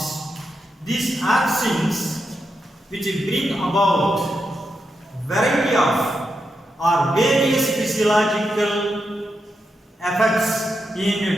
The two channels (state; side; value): normal; both; correlation 0.86